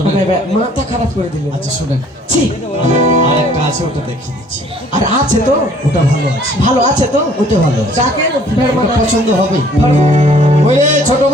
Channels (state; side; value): normal; both; correlation 0.57